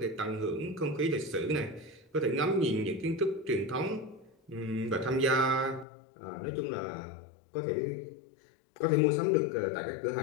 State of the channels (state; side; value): drops out; right; at 5.9 s